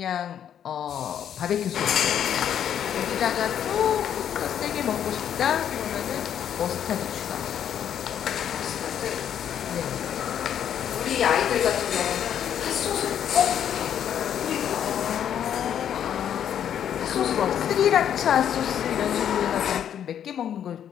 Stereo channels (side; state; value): right; quieter; 9.5 dB